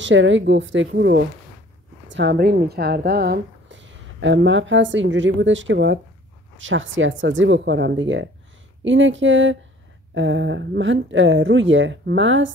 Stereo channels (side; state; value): both; normal; correlation 0.52